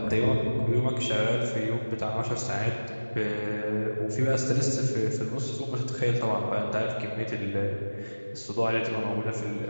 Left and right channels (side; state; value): both; inverted; correlation -1.00